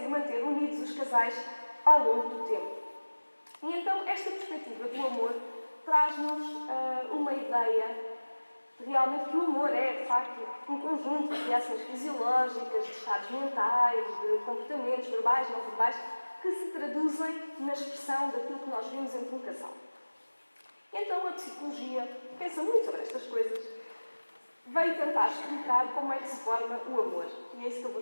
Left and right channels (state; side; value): inverted; both; correlation -1.00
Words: manter unidos os casais ao longo do tempo. E então, esta perspectiva do amor traz-nos uma ideia de realmente que o amor é, de facto, um conjunto de reações fisiológicas, de estados mentais, de comportamentos verbais, não verbais, que se traduzem na expressão daquilo que nós vimos entre um casal. E então, a psicologia pensa muito sobre estas coisas, veio tentar explicar como é que se forma o amor. E é isso que eu